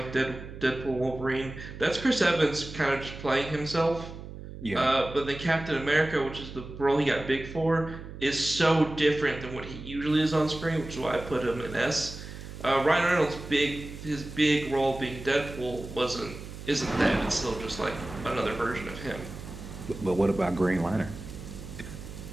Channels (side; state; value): right; noise; hum, 12 dB below the sound